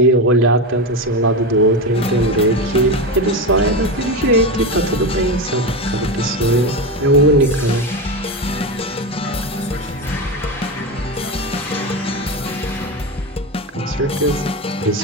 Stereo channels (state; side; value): normal; both; correlation 0.17